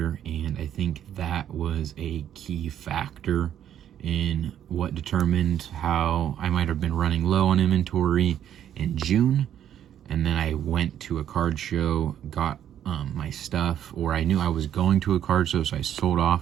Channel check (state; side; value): quieter; left; 10.3 dB